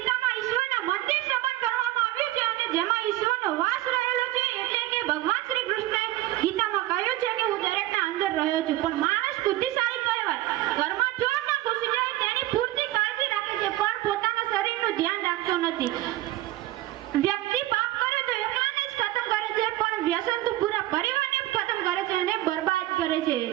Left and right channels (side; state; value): left; quieter; 16.1 dB